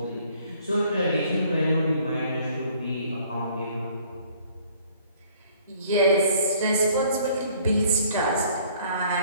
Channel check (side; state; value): both; inverted; correlation -0.58